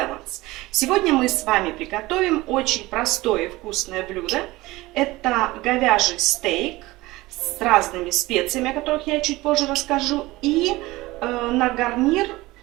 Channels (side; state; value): left; quieter; 19.7 dB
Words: Сегодня мы с вами приготовим очень простое и вкусное блюдо. Это говяжий стейк с разными специями, о которых я чуть позже расскажу. И на гарнир